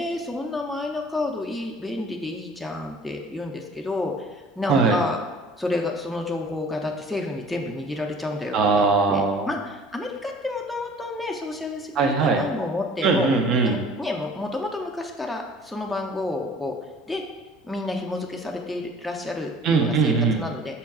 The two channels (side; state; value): both; normal; correlation 0.49